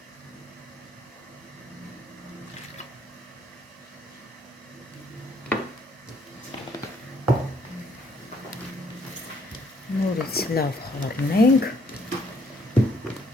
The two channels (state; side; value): normal; both; correlation 0.67